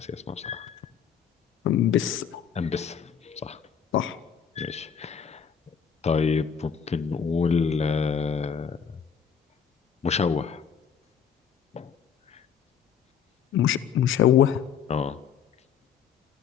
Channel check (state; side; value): quieter; right; 7.6 dB